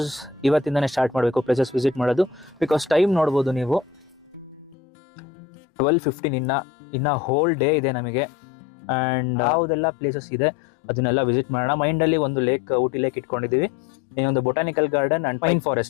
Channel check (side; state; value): right; drops out; at 4.8 s